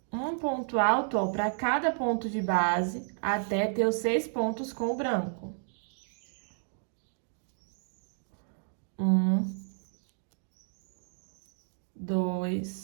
Um ponto alto, para cada ponto de base, até ter os 6 pontos com o branco. 1,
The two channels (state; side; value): silent; left; digital silence